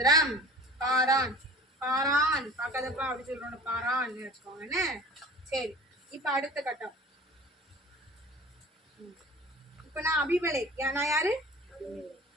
பாரான் பாரான் பாக்காதப்பா அப்படி சொல்றோம். பாரான் வச்சுக்கோங்க. சரி, இப்ப அடுத்த கட்டம். இப்ப நான் அபிமலேக். நான் யாரு?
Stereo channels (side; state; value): both; normal; correlation 0.43